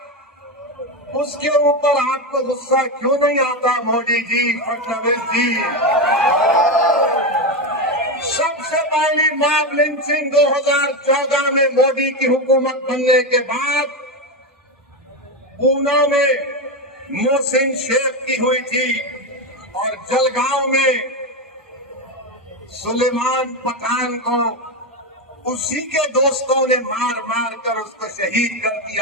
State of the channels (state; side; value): normal; both; correlation 0.12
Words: उसके ऊपर आपको गुस्सा क्यों नहीं आता मोदी जी, फडणवीस जी? सबसे पहली मॉब लिंचिंग 2014 में मोदी की हुकूमत बनने के बाद पूना में मोहसिन शेख की हुई थी और जलगांव में सुलेमान पठान को उसी के दोस्तों ने मार मार कर उसको शहीद कर